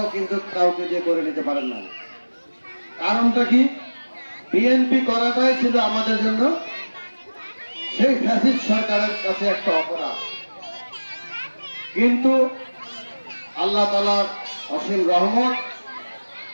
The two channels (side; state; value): both; inverted; correlation -1.00